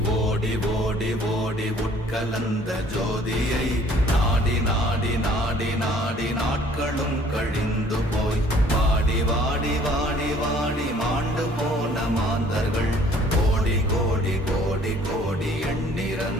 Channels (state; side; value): normal; both; correlation 0.56